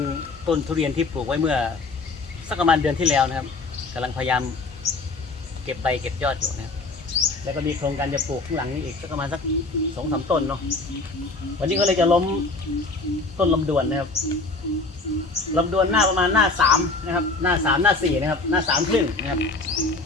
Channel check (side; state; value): right; quieter; 3.5 dB